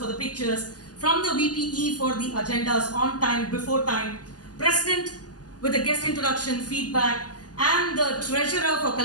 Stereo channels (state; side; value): late; right; 0.68 ms